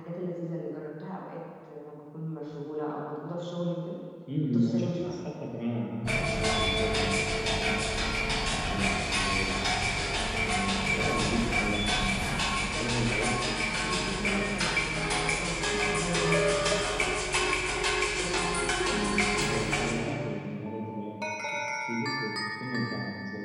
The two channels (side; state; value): both; identical; correlation 1.00